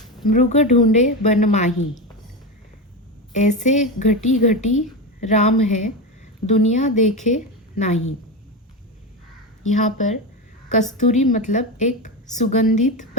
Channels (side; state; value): both; normal; correlation 0.17